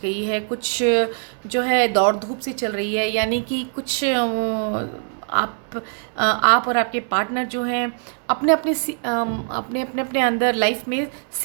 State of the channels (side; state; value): left; silent; 57 dB below the other